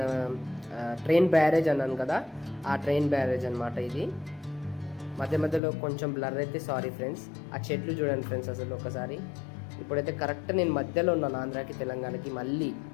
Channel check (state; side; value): drops out; right; at 5.6 s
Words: ట్రైన్ బ్యారేజ్ అన్నాను కదా, ఆ ట్రైన్ బ్యారేజ్ అనమాట ఇది. మధ్యలో కొంచెం బ్లర్ అయితే సారీ ఫ్రెండ్స్. ఆ చెట్లు చూడండి ఫ్రెండ్స్ అసలు ఒకసారి. ఇప్పుడైతే కరెక్ట్ నేను మధ్యలో ఉన్నాను, ఆంధ్రాకి తెలంగాణకి. మళ్ళీ